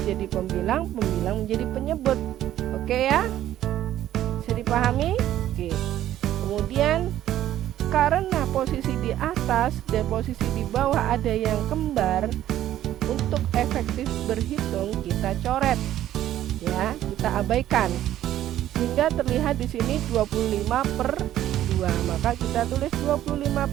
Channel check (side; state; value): left; quieter; 12.6 dB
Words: jadi pembilang, pembilang menjadi penyebut. Oke ya? Bisa dipahami? Oke. Kemudian karena posisi di atas dan posisi di bawah ada yang kembar, untuk efektif berhitung kita coret. Ya, kita abaikan. Sehingga terlihat di sini 25/2. Maka kita tulis